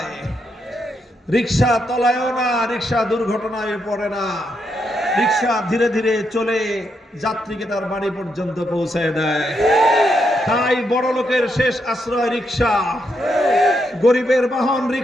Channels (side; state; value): both; normal; correlation 0.80